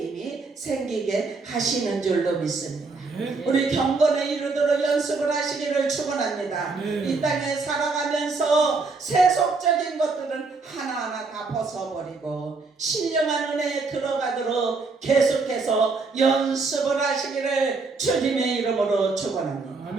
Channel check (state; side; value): quieter; left; 4.0 dB